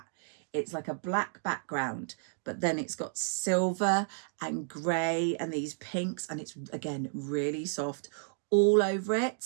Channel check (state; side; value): silent; left; digital silence